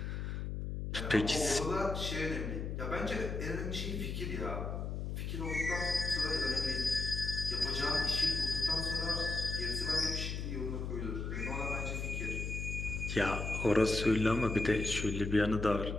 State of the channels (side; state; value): left; noise; hum, 3 dB below the sound